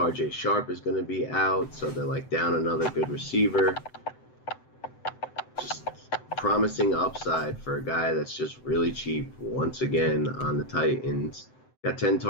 Sharp is going to be out, so they're down another good receiver. Just promising upside for a guy that's just really cheap once again on the Titans. Got 10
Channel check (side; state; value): right; late; 7.8 ms